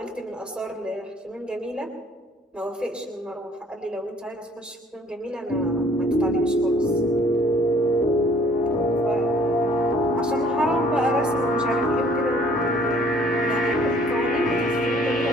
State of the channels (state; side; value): normal; both; correlation 0.58